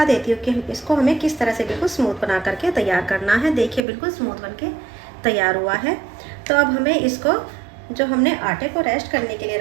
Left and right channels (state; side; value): drops out; left; at 3.8 s